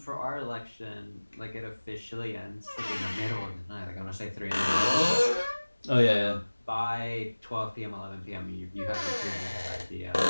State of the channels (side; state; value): both; inverted; correlation -1.00